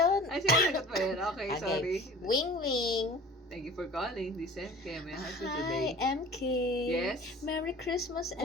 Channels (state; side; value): normal; both; correlation 0.43